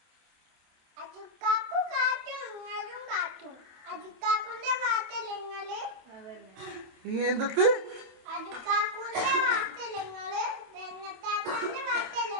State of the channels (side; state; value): left; late; 27 ms